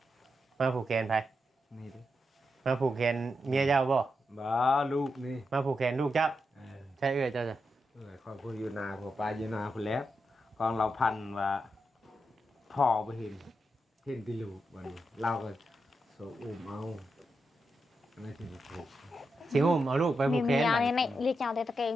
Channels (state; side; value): normal; both; correlation 0.86